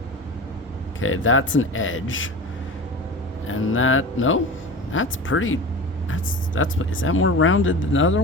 Okay, that's an edge. And that, no, that's pretty, is that more rounded than the other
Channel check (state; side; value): normal; both; correlation 0.32